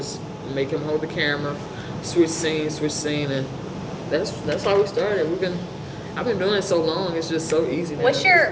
make him hold the camera, switch scene, and that's how we started. I've been doing it so long, it's just so easy now. What's your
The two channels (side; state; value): both; identical; correlation 1.00